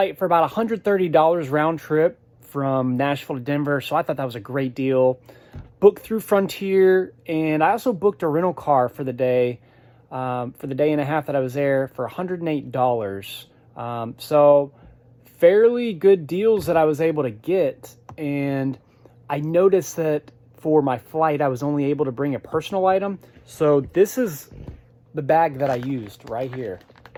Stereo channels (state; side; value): identical; both; correlation 1.00